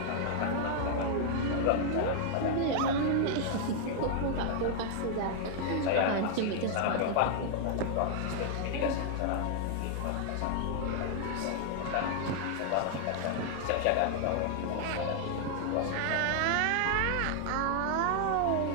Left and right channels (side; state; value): both; different; correlation -0.01